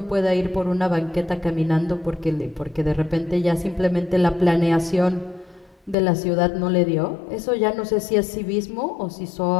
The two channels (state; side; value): drops out; right; at 6.0 s